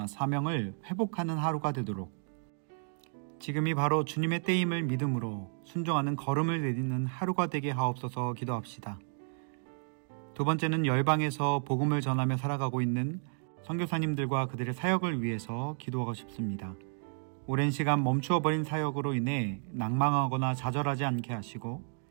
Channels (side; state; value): left; silent; digital silence